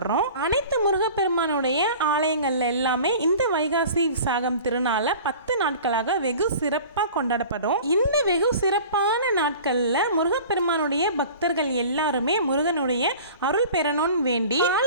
அனைத்து முருகப்பெருமானுடைய ஆலயங்கள்ல எல்லாமே இந்த வைகாசி விசாக திருநாள 10 நாட்களாக வெகு சிறப்பாக கொண்டாடப்படும். இந்த வெகு சிறப்பான நாட்கள்ல முருகப்பெருமானுடைய பக்தர்கள் எல்லாருமே முருகனுடைய அருள் பெறணும்னு வேண்டி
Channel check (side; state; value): both; inverted; correlation -0.42